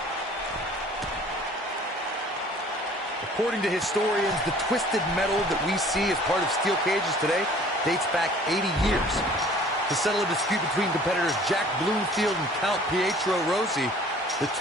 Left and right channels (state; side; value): normal; both; correlation 0.51